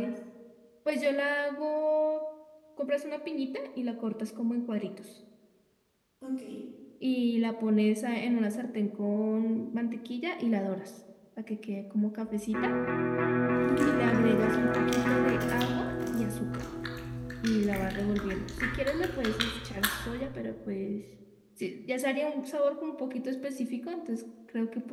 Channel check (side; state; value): both; identical; correlation 1.00